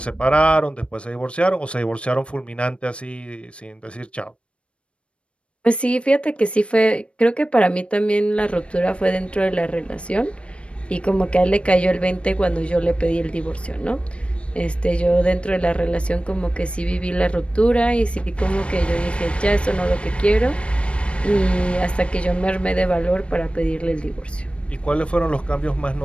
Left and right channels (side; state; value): right; late; 0.060 ms